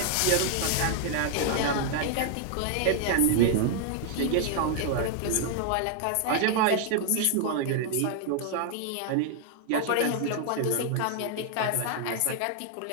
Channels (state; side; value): different; both; correlation 0.00